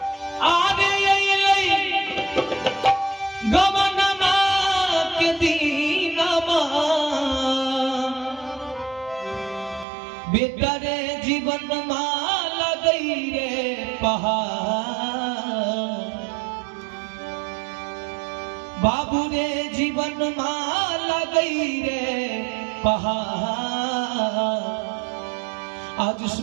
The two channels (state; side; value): drops out; left; at 9.9 s